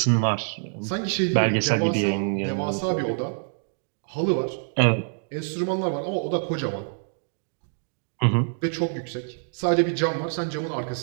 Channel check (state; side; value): silent; left; digital silence